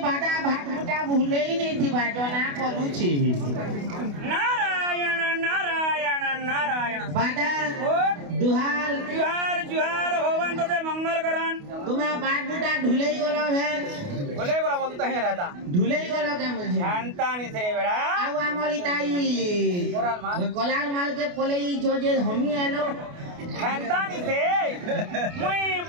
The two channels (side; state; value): left; late; 28 ms